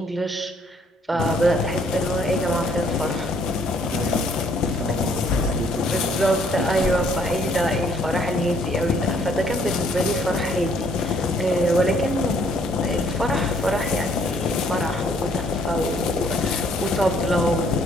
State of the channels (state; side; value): normal; both; correlation 0.64